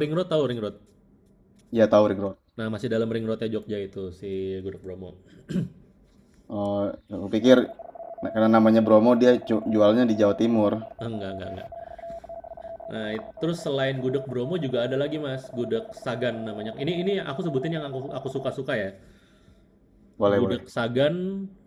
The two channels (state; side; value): identical; both; correlation 1.00